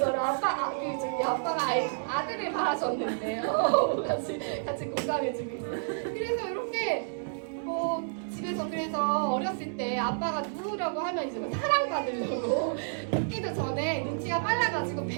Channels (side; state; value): left; silent; digital silence